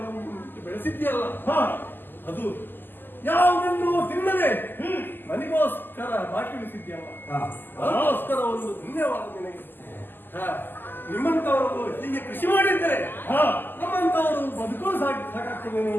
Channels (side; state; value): right; late; 0.093 ms